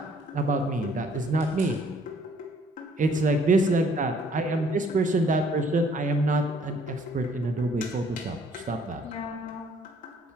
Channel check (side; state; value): both; normal; correlation 0.61